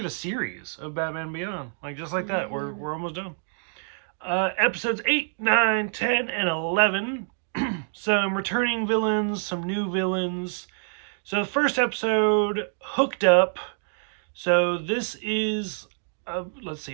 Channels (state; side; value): silent; left; digital silence